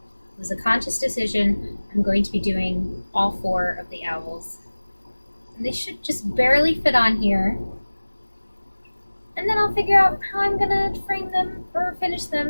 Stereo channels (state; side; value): inverted; both; correlation -1.00